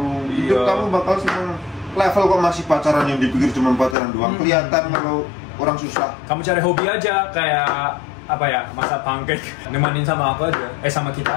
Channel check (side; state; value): right; drops out; at 4.0 s